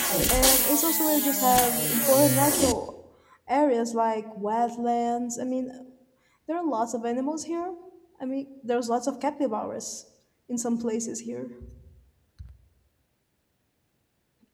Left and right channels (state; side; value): identical; both; correlation 1.00